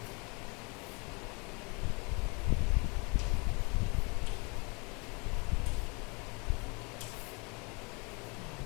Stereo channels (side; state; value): right; quieter; 30.6 dB